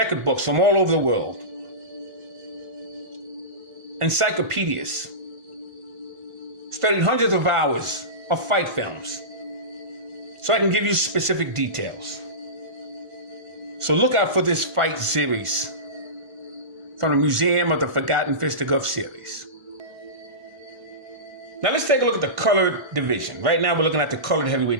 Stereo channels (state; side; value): late; left; 1.5 ms